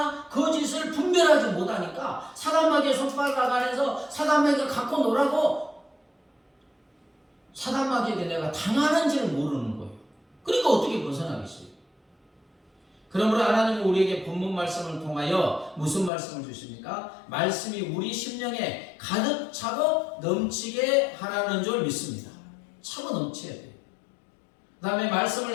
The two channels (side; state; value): right; drops out; at 16.1 s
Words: 거짓을 분별하지 못하니까 사단마귀의 손바닥 안에서 사단마귀가 갖고 놀라고 사단마귀에게 내가 당하는지를 모르는 거예요. 그러니까 어떻게 벗어나겠어요? 그러므로 하나님은 우리에게 본문 말씀을 통하여 무슨 말씀을 주십니까? 말씀이 우리 심령에 가득 차고 넘치게 하라는 줄 믿습니다. 차고 넘쳐야 돼요. 그 다음에 말씀을